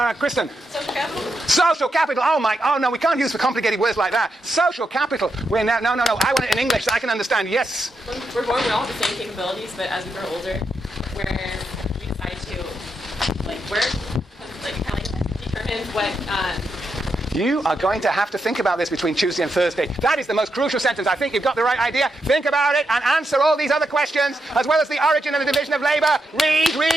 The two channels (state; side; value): normal; both; correlation 0.84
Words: Kristen. Social capital? Social capital. Oh no, we can't use for complicated words like that. Social capital. No. I want it in English so I can understand. Yes. We're born with all the same capabilities, but as we grow older, where we decide to work, kind of determine what. You are going to have to think about this between Tuesday and Thursday. That is the most crucial sentence. I think you've got the right idea. Think about it and answer all these other questions, as well as the origin and the division of labor. Read,